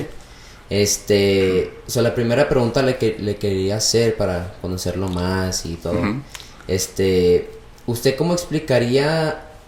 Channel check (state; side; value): identical; both; correlation 1.00